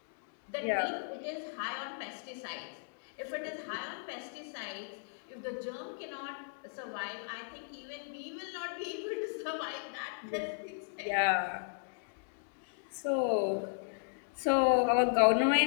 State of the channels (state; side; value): silent; right; digital silence